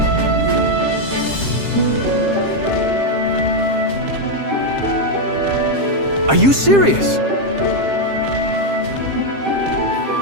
Are you serious?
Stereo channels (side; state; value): left; late; 7.5 ms